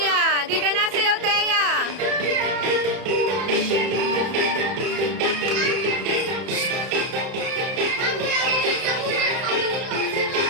di ka nasayaw, Teya.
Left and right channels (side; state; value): left; late; 31 ms